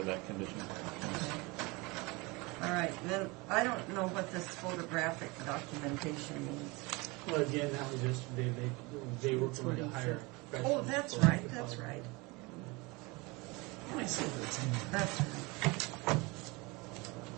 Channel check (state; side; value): quieter; left; 25.5 dB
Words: that condition. All right, then I don't know what this photographic documentation means. Well, again, that was yesterday. They were going to hire. Oh, that's right, that's right. That's right.